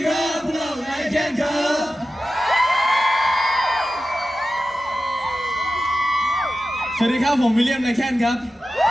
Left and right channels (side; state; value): both; normal; correlation 0.93